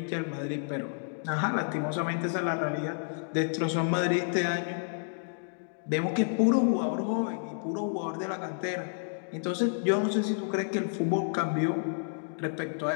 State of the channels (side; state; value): right; silent; digital silence